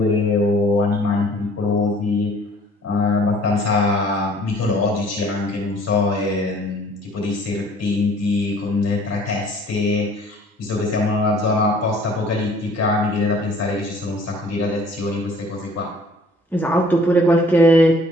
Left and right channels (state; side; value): normal; both; correlation 0.54